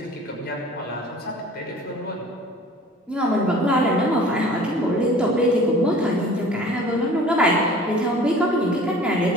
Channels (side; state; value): both; normal; correlation 0.46